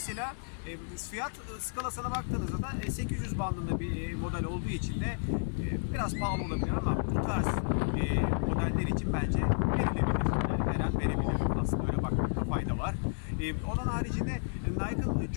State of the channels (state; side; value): silent; right; 57 dB below the other